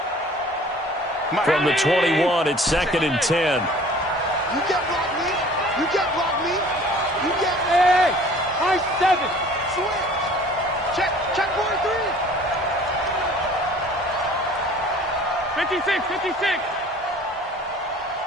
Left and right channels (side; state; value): both; normal; correlation 0.49